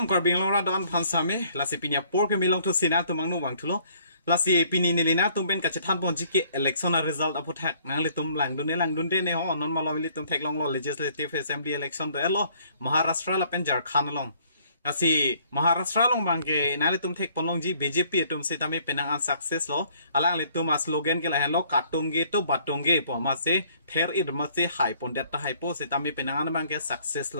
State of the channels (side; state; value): both; inverted; correlation -0.61